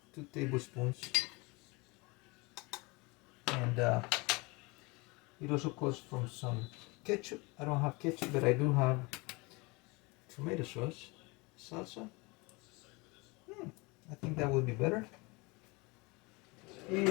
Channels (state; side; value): quieter; right; 26.4 dB